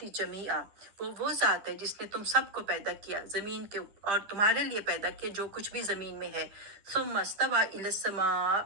جمیعا وہ ذات ہے جس نے تم سب کو پیدا کیا زمین کے اور تمہارے لیے پیدا کیا جو کچھ بھی زمین میں ہے، ثم استوى الی السماء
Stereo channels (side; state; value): left; late; 9.9 ms